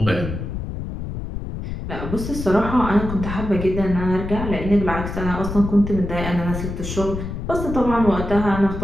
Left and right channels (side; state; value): left; noise; rumble, 6 dB below the sound